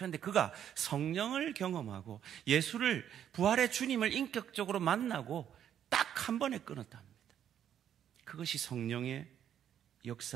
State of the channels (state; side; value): quieter; left; 9.8 dB